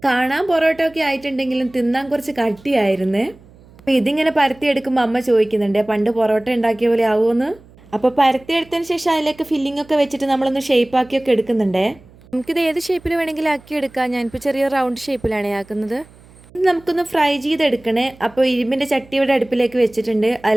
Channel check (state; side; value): noise; right; hum, 25 dB below the sound